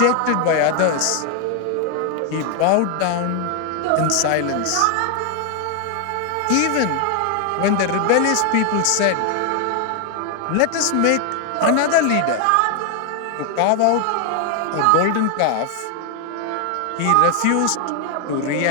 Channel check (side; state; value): both; different; correlation 0.00